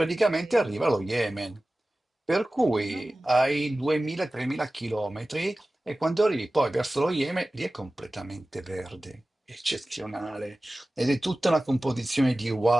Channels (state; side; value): normal; both; correlation 0.97